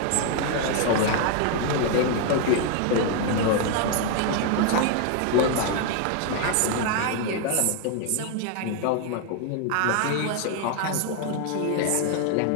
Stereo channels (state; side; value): different; both; correlation 0.01